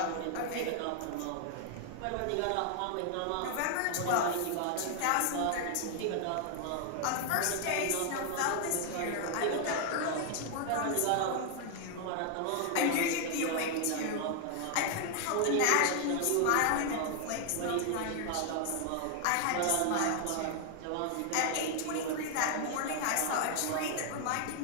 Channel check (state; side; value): different; both; correlation 0.00